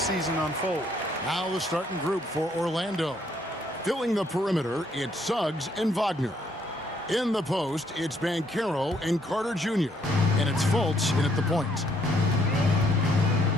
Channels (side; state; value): both; normal; correlation 0.69